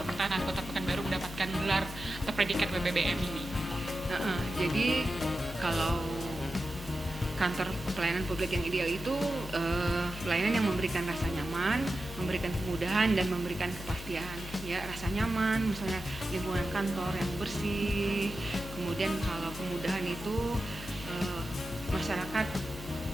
pertahanan Kota Pekanbaru mendapatkan gelar atau predikat WBBM ini. Jadi kalau kantor pelayanan publik yang ideal itu pelayanan yang memberikan rasa nyaman, memberikan kemudahan dan memberikan kepastian. Ya, rasa nyaman, misalnya lingkungan kantor yang bersih. Kemudian kalau kemudahan itu masyarakat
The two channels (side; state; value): left; noise; hum, 13 dB below the sound